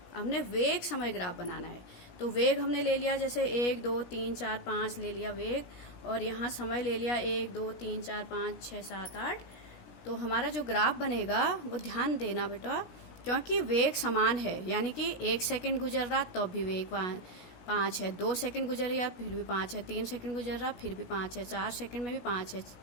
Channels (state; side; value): late; right; 16 ms